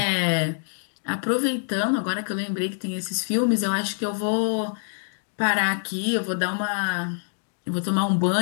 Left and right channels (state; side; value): silent; right; digital silence